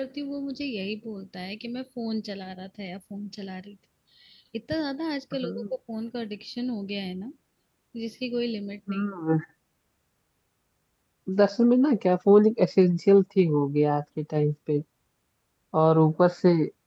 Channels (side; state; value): both; identical; correlation 1.00